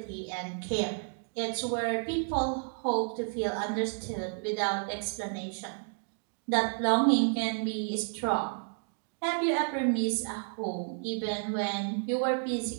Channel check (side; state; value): left; silent; 57 dB below the other